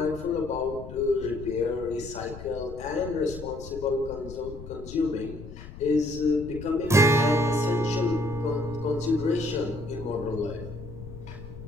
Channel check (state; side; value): noise; left; rumble, 13 dB below the sound